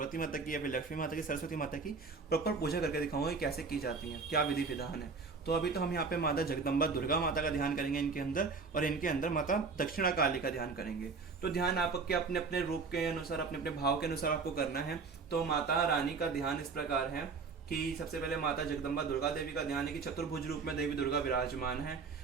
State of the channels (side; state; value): left; quieter; 4.7 dB